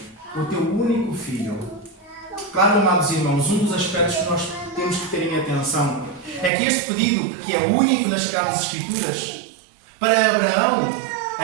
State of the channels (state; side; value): drops out; left; at 6.5 s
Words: o teu único filho, Claro, amados irmãos, um dos aspectos que nós temos que ter em atenção é que este pedido, que é único nas Sagradas Escrituras, para Abraão,